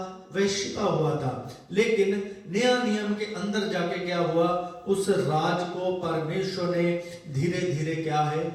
वह छिपा हुआ था, लेकिन नया नियम के अंदर जाके क्या हुआ, उस राज को परमेश्वर ने धीरे धीरे क्या है,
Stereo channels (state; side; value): identical; both; correlation 1.00